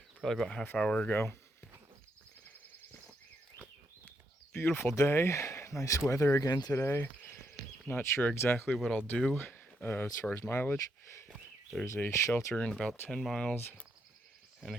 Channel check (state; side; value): normal; both; correlation 0.78